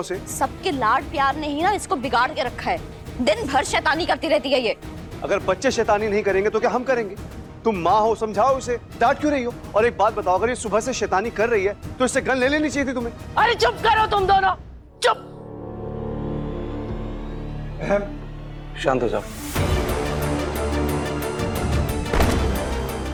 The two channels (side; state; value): both; identical; correlation 1.00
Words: सबके लाड प्यार ने ही ना इसको बिगाड़ के रखा है। दिन भर शैतानी करती रहती है ये। अगर बच्चे शैतानी नहीं करेंगे तो क्या हम करेंगे? तुम माँ हो, समझाओ इसे, डांट क्यों रही हो? और एक बात बताओ, अगर ये सुबह से शैतानी कर रही है तो इससे गन ले लेनी चाहिए थी तुम्हें। अरे चुप करो तुम दोनों, चुप। शांत हो जाओ।